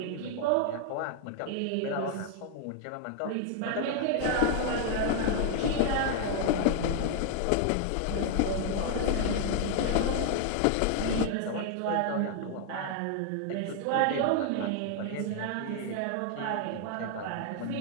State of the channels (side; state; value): both; different; correlation 0.00